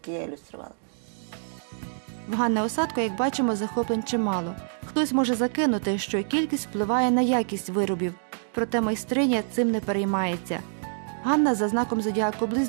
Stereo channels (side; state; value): left; silent; digital silence